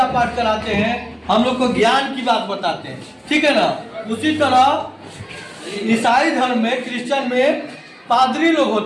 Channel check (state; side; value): identical; both; correlation 1.00